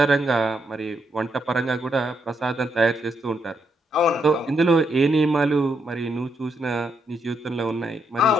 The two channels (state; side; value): normal; both; correlation 0.78